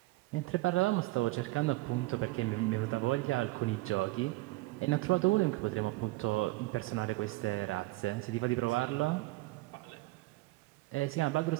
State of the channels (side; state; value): left; quieter; 20.5 dB